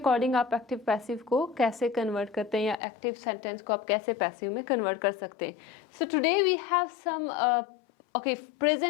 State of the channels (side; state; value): right; drops out; at 2.8 s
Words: आप एक्टिव पैसिव को कैसे कन्वर्ट करते हैं या एक्टिव सेंटेंस को आप कैसे पैसिव में कन्वर्ट कर सकते हैं। So today we have some